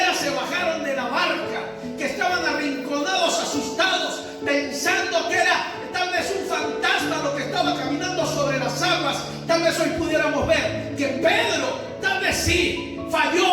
se bajaron de la barca, que estaban arrinconados, asustados, pensando que era tal vez un fantasma lo que estaba caminando sobre las aguas, tal vez hoy pudiéramos ver que Pedro tal vez sí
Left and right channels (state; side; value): identical; both; correlation 1.00